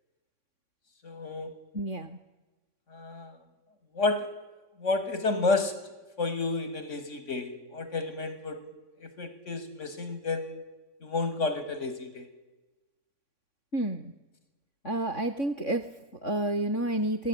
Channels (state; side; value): late; right; 3.6 ms